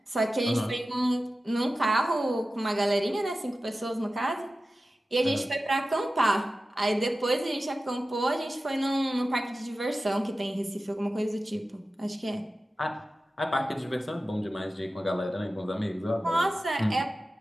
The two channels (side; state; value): both; normal; correlation 0.94